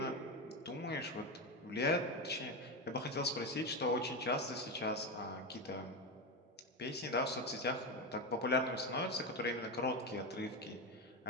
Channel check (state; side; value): normal; both; correlation 0.14